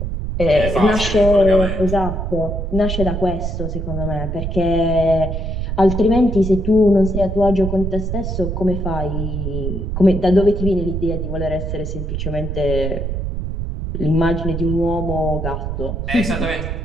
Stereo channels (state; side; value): noise; right; rumble, 3 dB below the sound